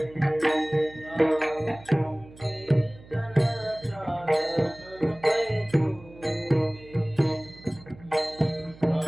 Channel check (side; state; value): right; noise; hum, 21 dB below the sound